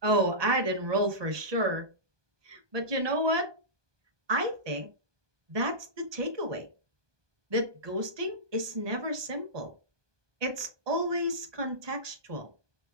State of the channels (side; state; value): left; late; 1.2 ms